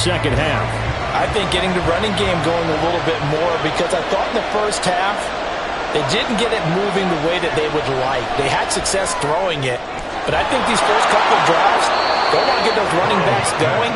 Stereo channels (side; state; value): both; identical; correlation 1.00